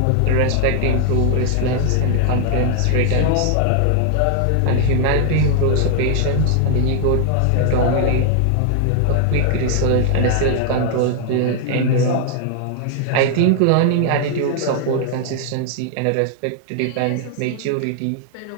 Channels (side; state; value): both; different; correlation 0.00